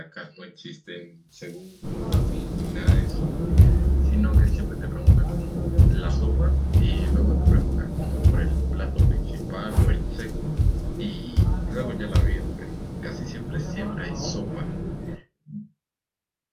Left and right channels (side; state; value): both; identical; correlation 1.00